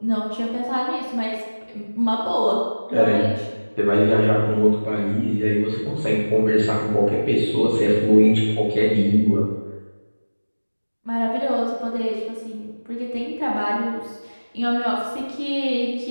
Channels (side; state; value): both; inverted; correlation -1.00